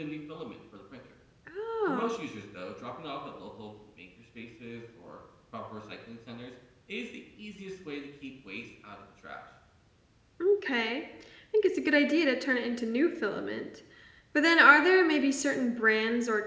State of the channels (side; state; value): both; identical; correlation 1.00